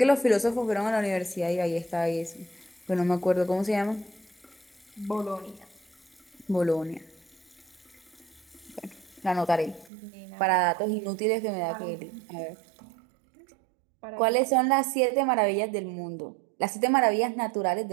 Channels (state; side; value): drops out; left; at 9.9 s